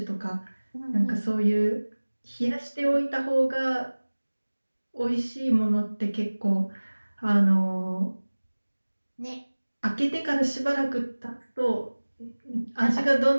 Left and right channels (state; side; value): inverted; both; correlation -1.00